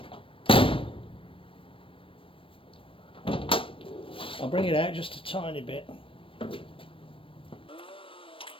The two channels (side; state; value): right; late; 0.25 ms